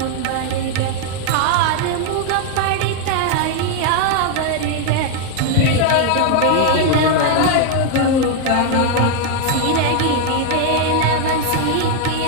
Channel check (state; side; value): different; both; correlation 0.00